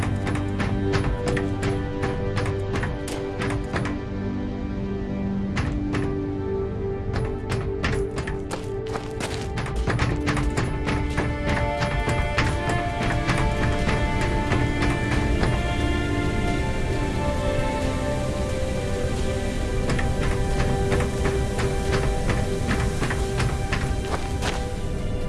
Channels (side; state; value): both; identical; correlation 1.00